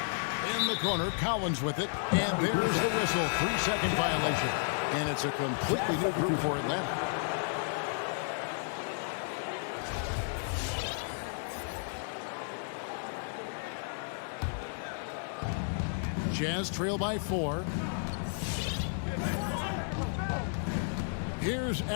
In the corner, Collins with it. And there's the whistle. 3-second violation. And it's a completely new group for Atlanta. Jazz trail by 4. Here's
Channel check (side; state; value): right; silent; digital silence